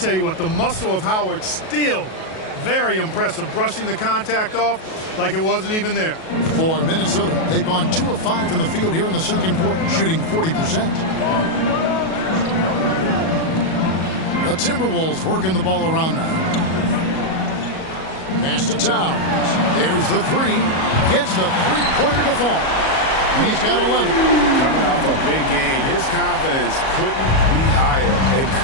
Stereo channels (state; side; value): late; right; 37 ms